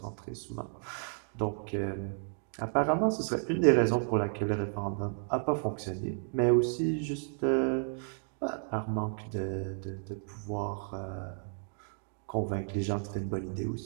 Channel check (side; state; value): left; silent; 56 dB below the other